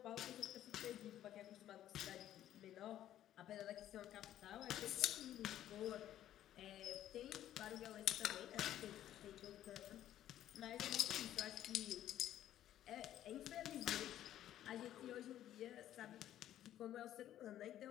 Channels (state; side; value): quieter; right; 12.1 dB